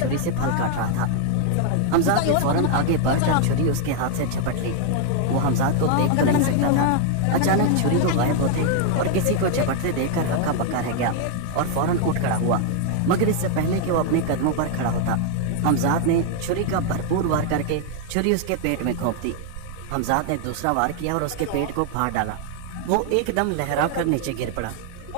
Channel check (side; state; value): both; different; correlation 0.00